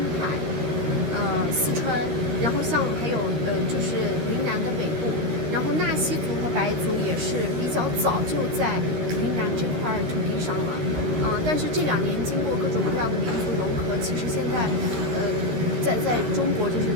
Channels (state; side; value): late; left; 13 ms